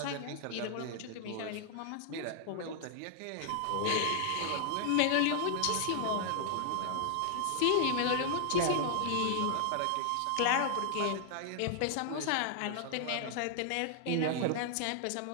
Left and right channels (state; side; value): different; both; correlation -0.01